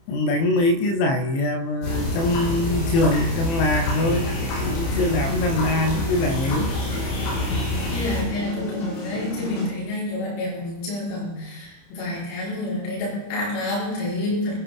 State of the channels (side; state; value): right; late; 30 ms